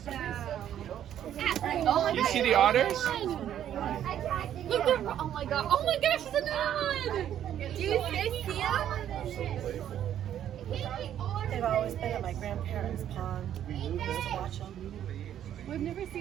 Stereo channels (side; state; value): left; quieter; 10.6 dB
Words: that. Oh my You God. see the otters? Look, oh my God. Oh my gosh, it's another one. Do you see him? They've always been at my grandparents' pond. Just to watch them. We've never